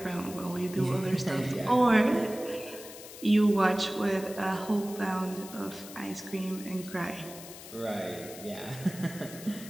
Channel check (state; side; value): noise; left; hiss, 15 dB below the sound